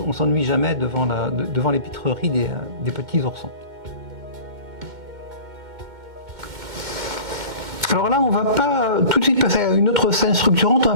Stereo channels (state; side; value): late; left; 2.2 ms